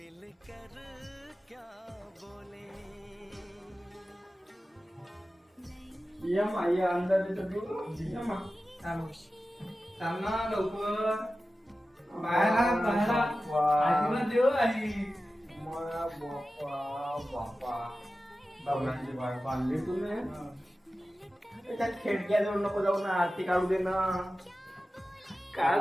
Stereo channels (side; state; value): both; normal; correlation 0.94